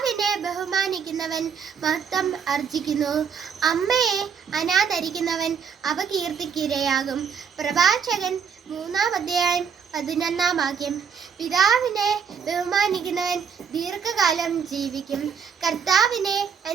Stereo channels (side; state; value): left; quieter; 6.6 dB